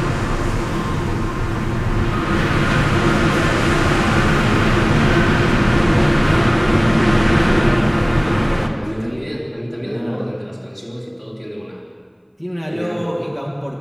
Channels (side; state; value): both; identical; correlation 1.00